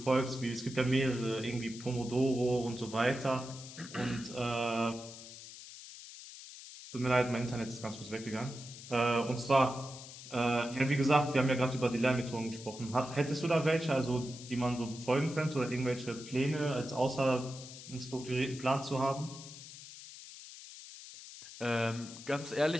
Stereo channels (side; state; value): left; noise; hiss, 14 dB below the sound